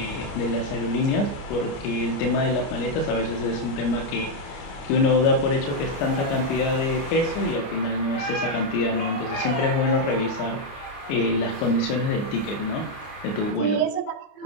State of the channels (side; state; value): right; late; 29 ms